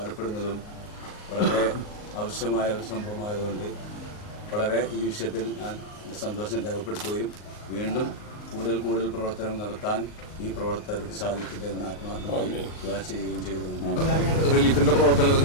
വളരെ ആവശ്യമായ ഒരു സംഭവമായതുകൊണ്ട് വളരെ ഈ വിഷയത്തിൽ ഞാൻ എൻ്റെ സന്തോഷം രേഖപ്പെടുത്തുകയും വീണ്ടും കൂടുതൽ പ്രവർത്തനങ്ങൾ നടത്താൻ ഈ പ്രവർത്തകർക്ക് സാധിക്കട്ടെ എന്ന് ആത്മാർത്ഥമായി ദുആ ചെയ്യുകയും ചെയ്തുകൊണ്ടാണ്. റിലീഫിൻ്റെ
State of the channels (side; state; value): right; late; 38 ms